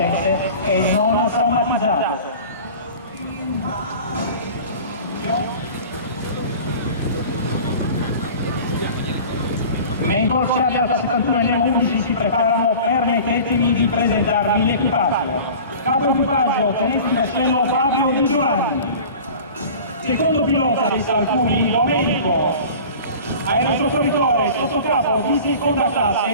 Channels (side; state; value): both; inverted; correlation -0.40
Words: e non traumatizzato. Mentre Corsair Alfa 71 e Nemo 11 si preparano, permettetemi di presentarvi l'equipaggio. Capo equipaggio, tenente di vascello Fabio Di Giovanni. Secondo pilota del Salcuni, Domenico. Aerosoccorritore sottocapo di seconda